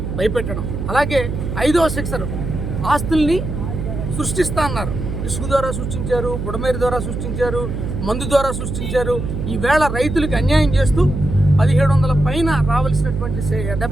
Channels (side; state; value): right; noise; hum, 4 dB below the sound